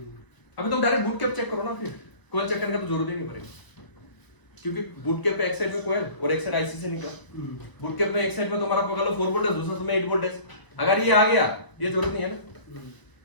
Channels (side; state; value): right; late; 1.0 ms